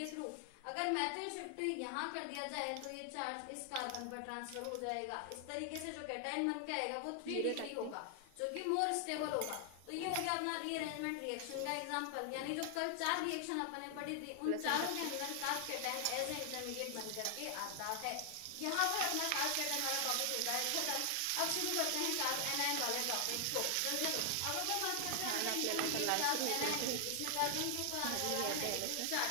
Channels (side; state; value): both; different; correlation 0.00